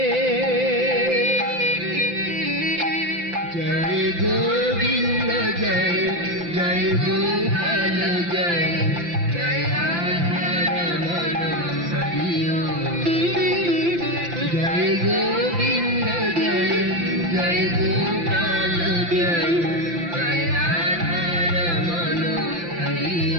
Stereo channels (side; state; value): left; late; 5.8 ms